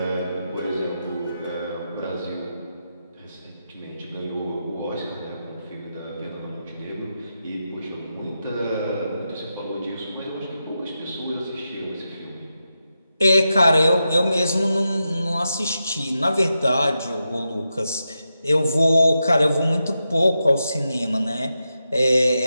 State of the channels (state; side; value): inverted; both; correlation -0.88